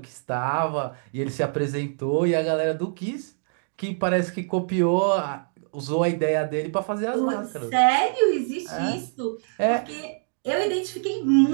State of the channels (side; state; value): left; silent; digital silence